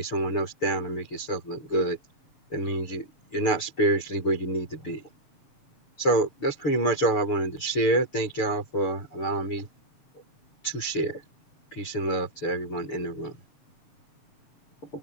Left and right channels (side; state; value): right; late; 6.8 ms